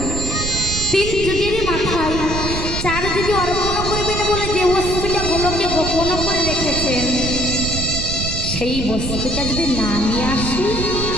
তিন যুগের মাথায় চার যুগে অর্পণ করবেন বলে যে বস্তুটা গোলকে গোপন করে রেখেছেন, সেই বস্তুটা যদি না নিয়ে আসি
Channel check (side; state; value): right; noise; rumble, 4 dB below the sound